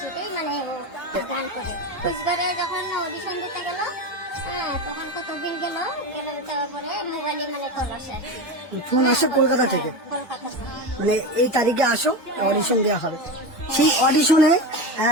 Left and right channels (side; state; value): both; normal; correlation 0.21